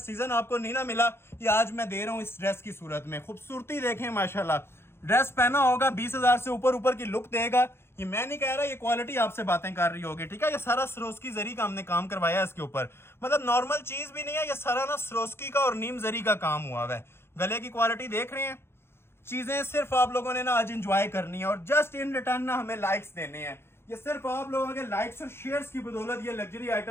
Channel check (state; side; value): late; right; 0.12 ms